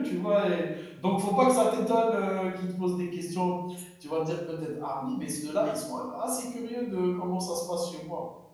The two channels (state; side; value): identical; both; correlation 1.00